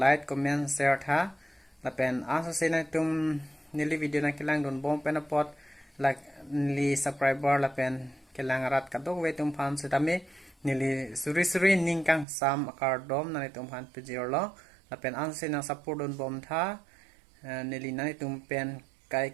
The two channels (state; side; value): drops out; left; at 12.2 s